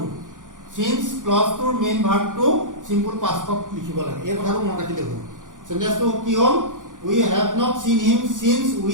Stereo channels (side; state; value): left; late; 0.87 ms